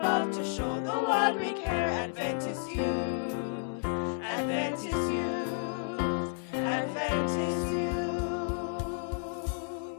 to show the world we care. Adventist youth, Adventist youth, Adventist youth.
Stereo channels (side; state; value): right; silent; 57 dB below the other